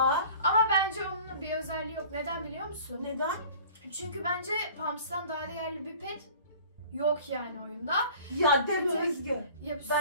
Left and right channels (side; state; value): both; inverted; correlation -0.46